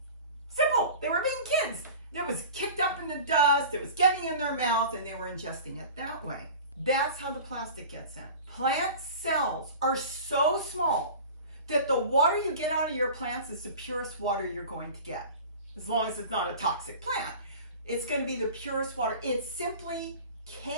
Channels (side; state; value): both; inverted; correlation -0.38